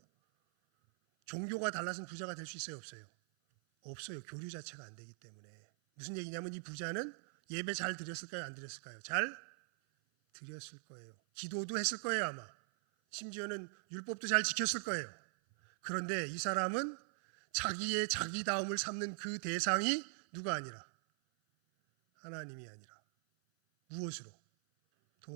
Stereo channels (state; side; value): silent; left; 51 dB below the other